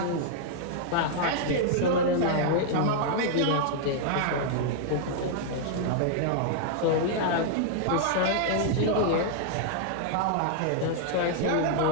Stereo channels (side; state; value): both; different; correlation -0.01